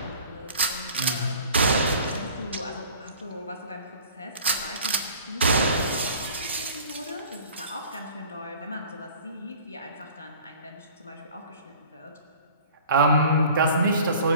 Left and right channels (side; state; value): both; inverted; correlation -0.47